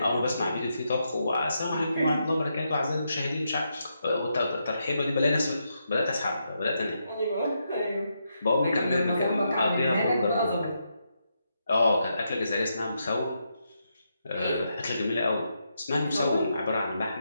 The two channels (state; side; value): inverted; both; correlation -0.82